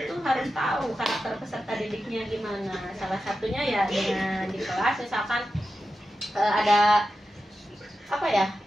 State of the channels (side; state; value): both; normal; correlation 0.91